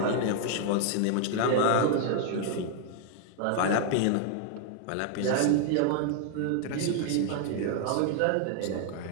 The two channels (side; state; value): both; different; correlation 0.00